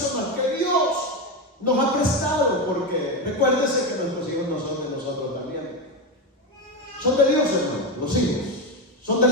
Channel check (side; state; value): both; normal; correlation 0.14